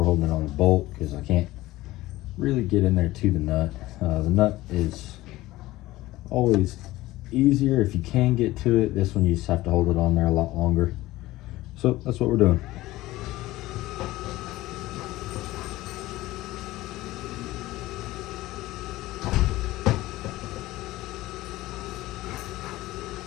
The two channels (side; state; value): right; quieter; 17.6 dB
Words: holding it on a bolt because I can't really get in there to the nut. The nut is always easier if you can get to it. This one you just have to hold it on there a lot longer. So that's what we're doing.